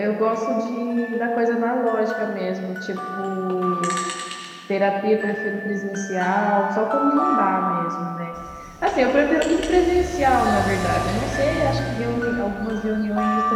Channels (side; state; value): both; identical; correlation 1.00